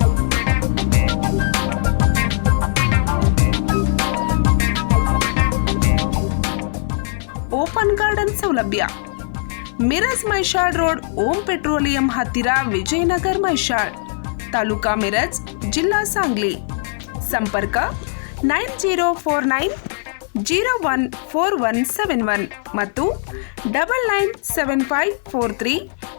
ಓಪನ್ ಗಾರ್ಡನ್ ಸೌಲಭ್ಯ. ಮಿರಜ್ ಮೈಷಾಳ್ ರೋಡ್, ಓಂ ಪೆಟ್ರೋಲಿಯಂ ಹತ್ತಿರ, ವಿಜಯನಗರ್ ಮೈಷಾಳ್, ತಾಲೂಕಾ ಮಿರಜ್, ಜಿಲ್ಲಾ ಸಾಂಗ್ಲಿ. ಸಂಪರ್ಕ 9049014171 ಮತ್ತು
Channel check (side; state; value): right; silent; digital silence